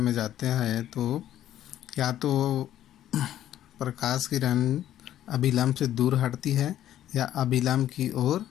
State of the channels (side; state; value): right; quieter; 12.0 dB